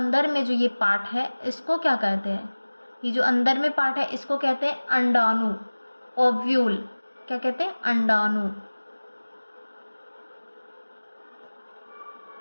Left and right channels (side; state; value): both; inverted; correlation -1.00